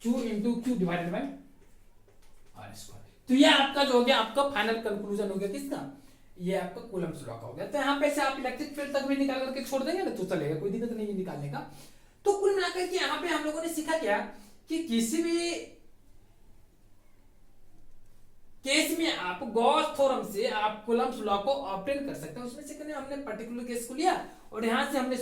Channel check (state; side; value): identical; both; correlation 1.00